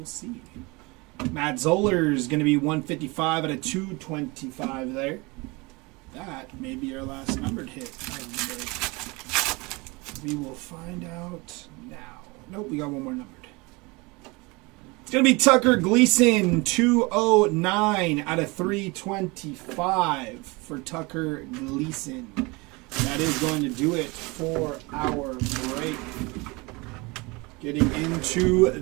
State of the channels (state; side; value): quieter; left; 25.7 dB